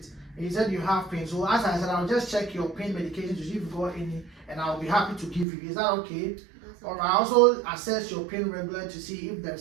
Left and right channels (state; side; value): drops out; left; at 5.5 s